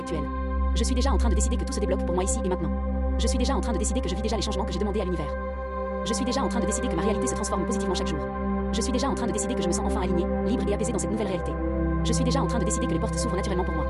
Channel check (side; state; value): both; identical; correlation 1.00